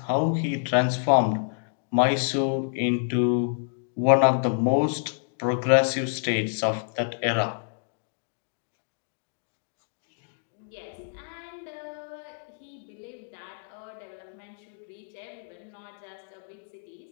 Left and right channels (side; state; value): right; silent; digital silence